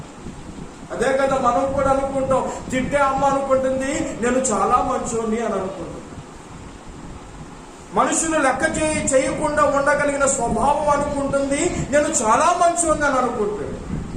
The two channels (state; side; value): identical; both; correlation 1.00